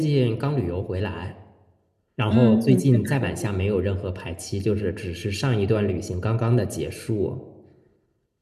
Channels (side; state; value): both; identical; correlation 1.00